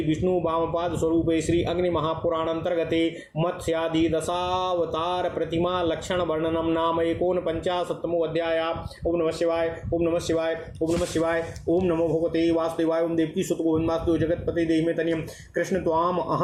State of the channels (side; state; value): both; identical; correlation 1.00